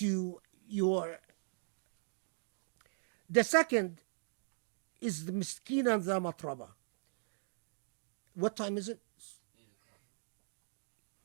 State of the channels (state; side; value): silent; left; digital silence